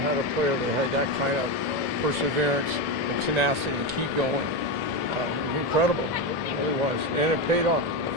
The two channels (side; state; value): both; normal; correlation 0.13